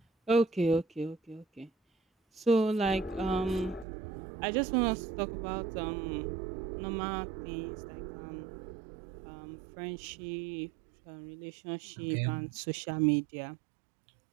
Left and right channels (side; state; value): left; drops out; at 3.9 s